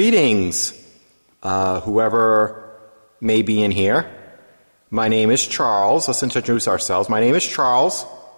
whoever may be in here. My name is Charles. Let's introduce ourselves. My name is Charles.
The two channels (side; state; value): both; inverted; correlation -1.00